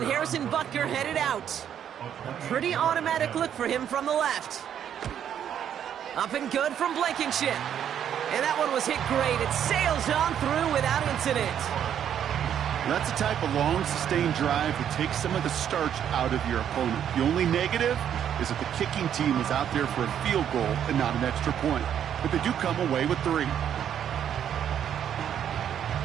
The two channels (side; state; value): left; quieter; 9.4 dB